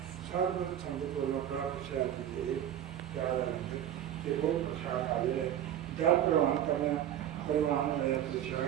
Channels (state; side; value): quieter; left; 10.8 dB